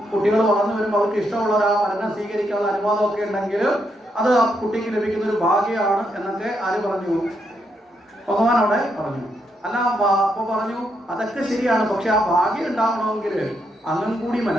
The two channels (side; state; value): both; normal; correlation 0.79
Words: കുട്ടികൾ വളർന്നു വരുമ്പോൾ അവർക്ക് ഇഷ്ടമുള്ള ആ വരനെ സ്വീകരിക്കാനുള്ള അനുവാദമൊക്കെ ഉണ്ടെങ്കിൽ അത് ആ കുട്ടിക്ക് ലഭിക്കുന്ന ഒരു ഭാഗ്യമാണ് എന്നൊക്കെ ആര് പറഞ്ഞു? ഭഗവാൻ അവിടെ പറഞ്ഞു. അല്ല, അപ്പൊ പറഞ്ഞു അതൊക്കെ ശരിയാണ്, പക്ഷെ ആ ഭാഗ്യം ഉണ്ടാവണമെങ്കിൽ അങ്ങും കൂടി